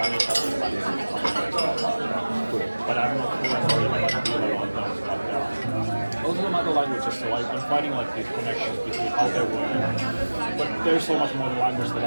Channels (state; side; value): inverted; both; correlation -1.00